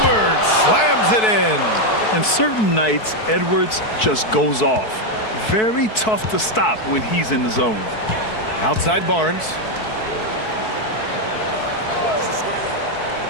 slams it in. And certain nights, Edwards just goes off. Very tough to stop when he's in the zone. Outside Barnes.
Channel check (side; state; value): right; late; 4.6 ms